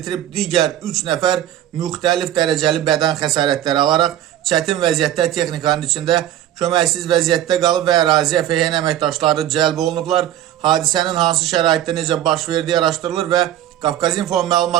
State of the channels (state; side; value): quieter; left; 12.1 dB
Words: itirib, digər 3 nəfər müxtəlif dərəcəli bədən xəsarətləri alaraq çətin vəziyyətdə texnikanın içində köməksiz vəziyyətdə qalıb və əraziyə FHN əməkdaşları cəlb olunublar. Hadisənin hansı şəraitdə necə baş verdiyi araşdırılır və Qafqazinfo